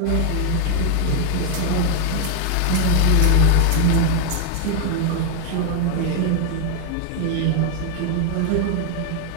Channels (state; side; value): different; both; correlation 0.00